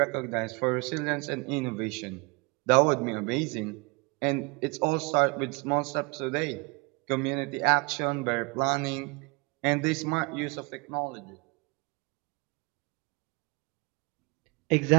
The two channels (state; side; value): quieter; left; 28.5 dB